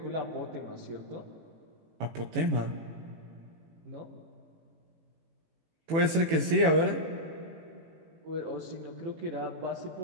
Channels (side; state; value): left; late; 18 ms